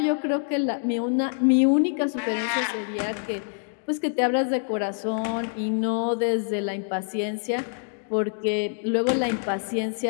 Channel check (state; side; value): silent; right; digital silence